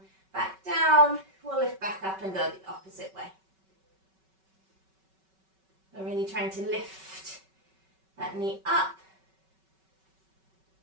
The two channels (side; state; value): left; late; 5.3 ms